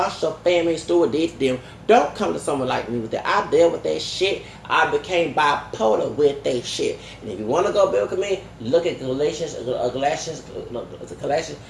family steward did to them. Don't come to someone like me with that. I dealt with that shit. I became bipolar with that shit. And if you want to go biblical me, look at Galatians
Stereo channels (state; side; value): identical; both; correlation 1.00